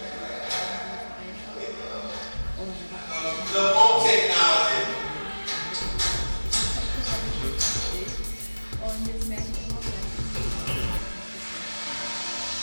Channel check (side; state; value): both; inverted; correlation -1.00